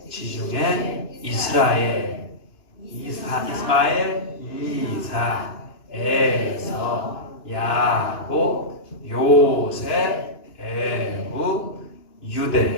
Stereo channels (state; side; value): late; right; 2.9 ms